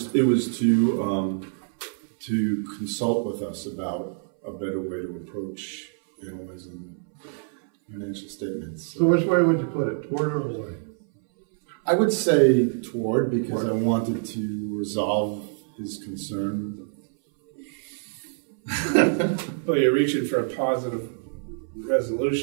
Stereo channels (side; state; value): left; silent; 60 dB below the other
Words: to consult with us about a better way to approach analyzing financial statements. So which way would you put it, toward or away? I would say toward, because I wanted to resolve his concern. Well, you're reaching for a positive